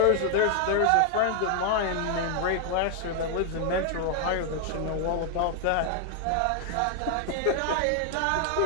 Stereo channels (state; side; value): different; both; correlation 0.00